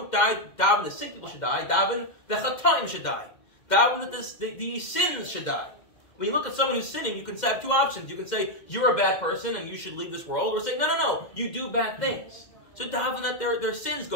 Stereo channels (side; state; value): right; late; 2.1 ms